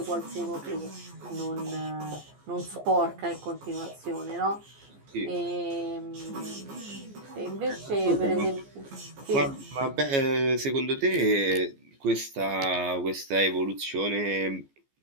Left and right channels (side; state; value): left; late; 14 ms